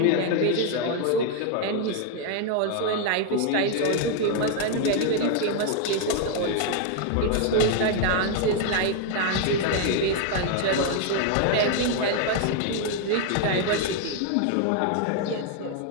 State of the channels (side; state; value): both; different; correlation 0.00